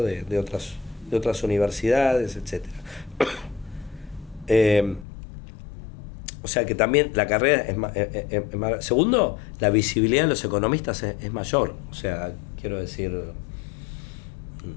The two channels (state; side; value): drops out; right; at 5.1 s